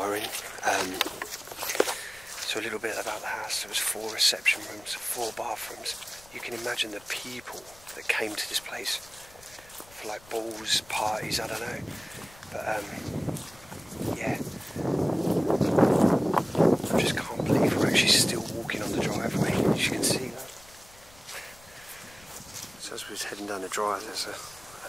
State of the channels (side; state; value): left; noise; rumble, 24 dB below the sound